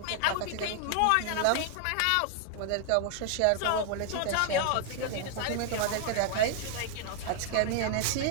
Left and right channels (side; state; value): both; different; correlation 0.00